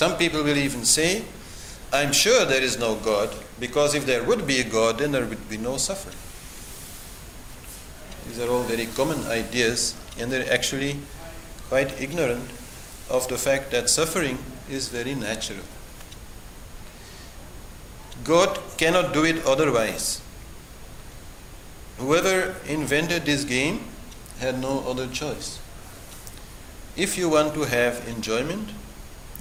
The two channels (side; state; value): both; identical; correlation 1.00